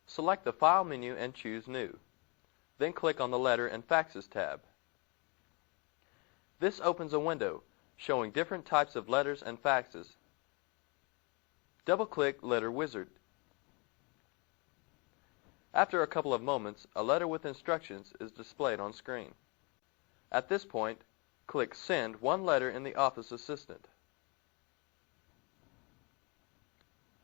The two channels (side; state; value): right; quieter; 30.9 dB